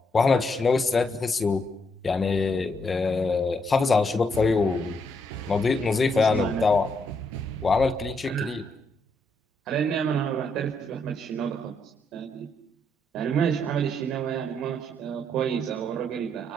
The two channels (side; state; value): both; normal; correlation 0.76